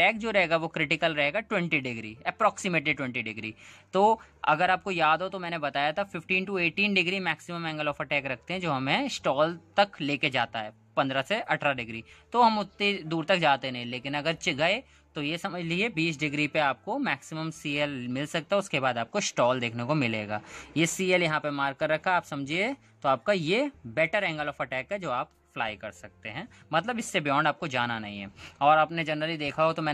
जो रहेगा वो क्रिटिकल रहेगा 20 डिग्री, अप्रोक्सीमेटली 20 डिग्री। तो अगर आपको याद हो तो मैंने बताया था 15 to 18 degree maximum angle of attack रखते हैं जो हमें स्टॉल तक लेके जाता है, 15 से 18 डिग्री। तो हम उतनी दूर तक जाते नहीं, लेकिन अगर गए तो ये समझ लीजिए 20 डिग्री पे आपको मैक्सिमम CL मिल सकता है, उसके बाद आपको स्टॉल देखने को मिलेगा। ये CL यहाँ पे मार्क कर रखा आप समझिए, तो आपका ये बेटर एंगल ऑफ अटैक है जो आप फ्लाई कर सकते हैं, मतलब इससे बियॉन्ड आपको जाना नहीं है। और आपने जनरली देखा हो तो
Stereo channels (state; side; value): identical; both; correlation 1.00